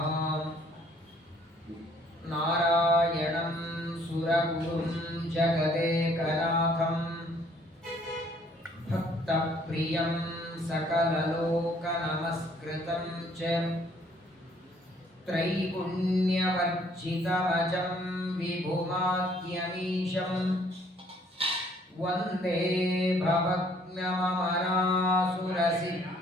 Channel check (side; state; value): both; normal; correlation 0.62